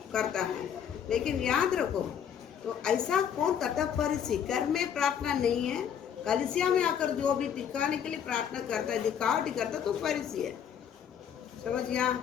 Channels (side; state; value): right; quieter; 8.5 dB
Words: करता है। लेकिन याद रखो, तो ऐसा कौन करता, फरीसी। घर में प्रार्थना नहीं है, कलीसिया में आकर जो भी दिखाने के लिए प्रार्थना करता है, दिखावटी करता, तो फरीसी है। समझ गया